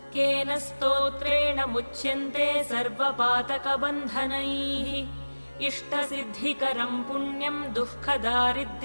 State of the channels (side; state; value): both; inverted; correlation -1.00